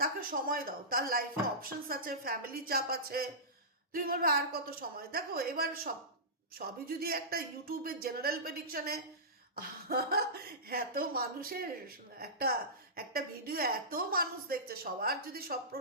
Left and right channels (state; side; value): normal; both; correlation -0.19